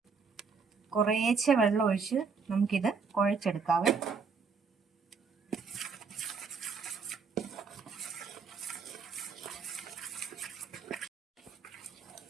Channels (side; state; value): left; quieter; 5.3 dB